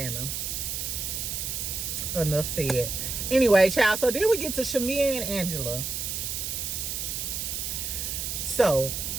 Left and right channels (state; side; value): noise; right; hiss, 3 dB below the sound